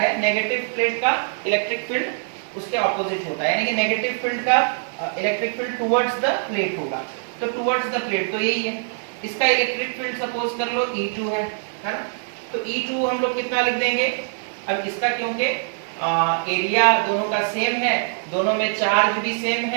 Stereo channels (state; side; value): silent; left; digital silence